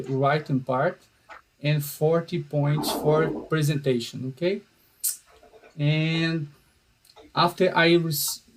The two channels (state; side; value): identical; both; correlation 1.00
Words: writing part, and 40 points for presentation. Okay, and after